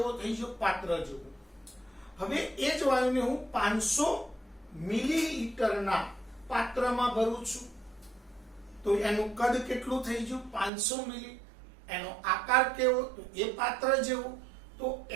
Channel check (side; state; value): left; drops out; at 10.7 s